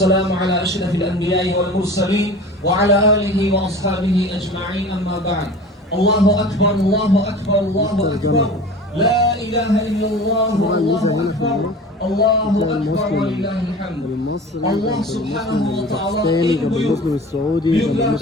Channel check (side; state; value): both; normal; correlation 0.38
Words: على أشرف الأنبياء والمرسلين وعلى آله وأصحابه أجمعين أما بعد الله أكبر الله أكبر الله أكبر لا إله إلا الله الله أكبر الله أكبر ولله الحمد الله سبحانه وتعالى